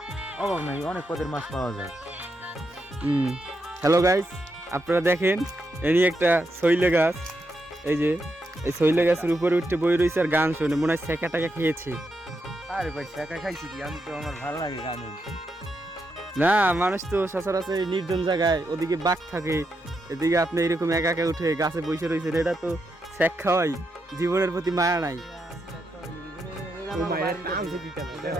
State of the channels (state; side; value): normal; both; correlation 0.83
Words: অভাব নাই, অনেক পদের মাছ পাওয়া যায়। হ্যালো গাইস, আপনারা দেখেন এনি একটা শৈলে গাছ। এই যে এই শৈলে গাছের উপরে উঠে বই রয়েছে আর গান শোনে, মনে হয় শেখা টাকা খেয়েছে। আরে ভাই, শেখা খাইছি কি, আমি তো, আমার ভালো লাগে গান। না, মানুষ তো সচরাচর নির্জন জায়গায়, ওদিকে বাঘ থাকে, এদিকে আপনি এরকম একা একা উঠে গাছে বসে রয়েছেন, এটা তো শেখ খাওয়াই, জীবনের প্রতি মায়া নাই।